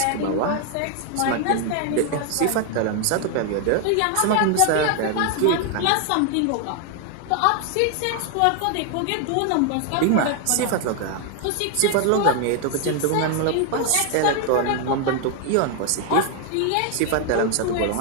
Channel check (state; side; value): different; both; correlation 0.01